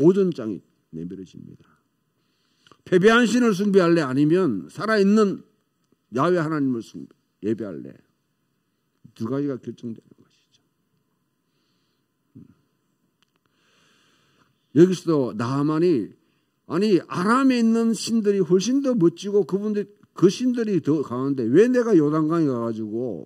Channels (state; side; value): identical; both; correlation 1.00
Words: 내밀어집니다. 패배한 신을 숭배할래? 아니면 살아있는 야훼 하나님을 예배할래? 두 가지가 결정되는 것이죠. 여기서도 나하만이 아람에 있는 신들이 훨씬 더 멋지고 그 신들이 더 강한데 왜 내가 요단강에 가가지고